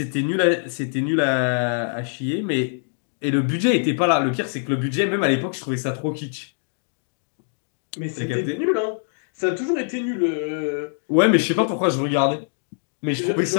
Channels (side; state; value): right; silent; digital silence